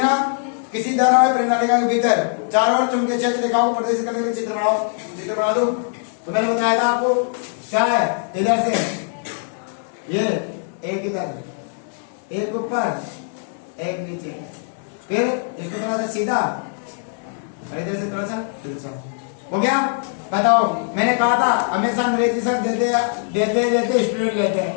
ना। किसी धारावाही प्रणालिका के भीतर चारों ओर चुंबकीय क्षेत्र रेखाओं को प्रदर्शित करने के लिए चित्र बनाओ। चित्र बना दो। तो मैंने बताया था आपको क्या है, इधर से ये एक इधर, एक ऊपर, एक नीचे, फिर इसको थोड़ा सा सीधा और इधर से थोड़ा सा तिरछा। हो गया? बताओ, मैंने कहा था हमेशा अंग्रेजी शब्द देते स्टूडेंट लेते हैं,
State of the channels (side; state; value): right; silent; digital silence